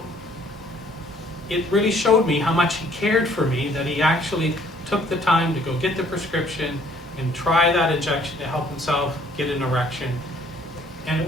it really showed me how much he cared for me, that he actually took the time to go get the prescription and try that injection to help himself get an erection. And it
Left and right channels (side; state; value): both; normal; correlation 0.60